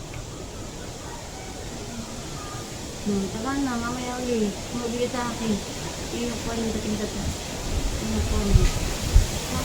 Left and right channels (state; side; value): identical; both; correlation 1.00